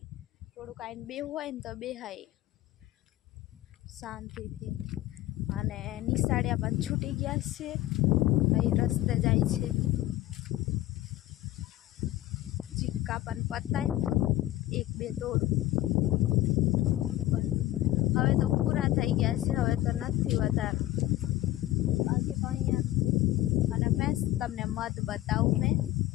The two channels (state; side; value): quieter; right; 15.4 dB